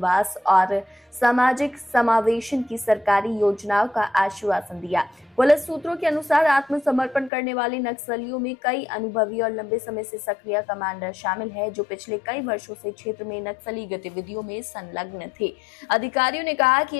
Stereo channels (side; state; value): right; drops out; at 7.3 s